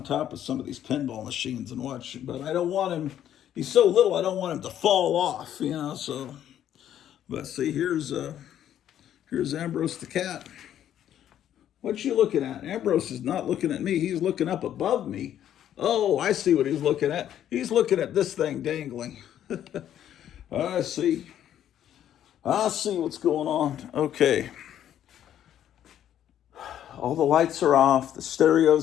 top of some of these pinball machines and watch, but I don't want him, he's so little, I don't want him to fall off, so. But see, here's Ambrose the cat. What you looking at? Ambrose is not looking at me. He's looking up above me. Oh, I see what he's looking at. He's looking at this thing dangling. I see what's going on. Okay. All the lights are off, the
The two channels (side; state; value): right; quieter; 10.7 dB